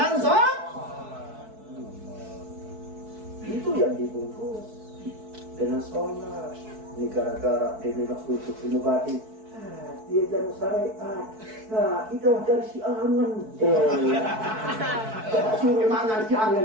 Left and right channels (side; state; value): left; late; 4.6 ms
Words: sholat. Itu yang dibungkus dengan sholat. Ini gara-gara dia memang khusus ilmu batin. Dia jangan syariat. Nah, itu dari si angan. Coba suruh mangan si angan